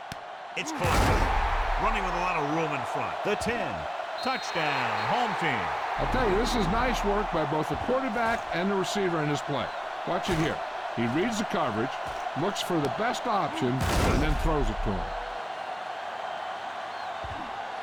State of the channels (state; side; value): identical; both; correlation 1.00